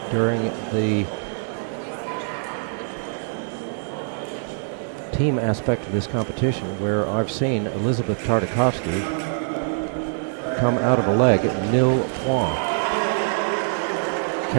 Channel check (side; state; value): left; silent; digital silence